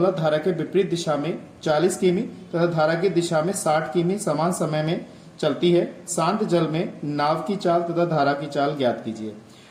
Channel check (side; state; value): both; identical; correlation 1.00